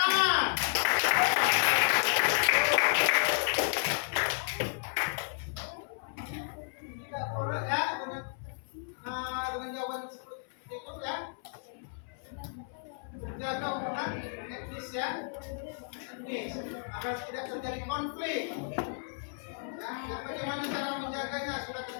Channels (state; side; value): silent; right; 56 dB below the other